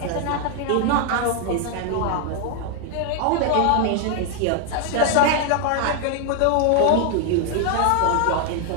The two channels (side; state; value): both; different; correlation 0.00